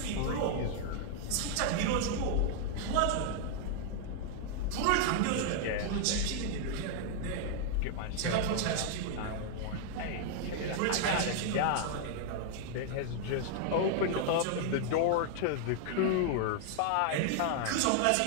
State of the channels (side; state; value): both; different; correlation 0.00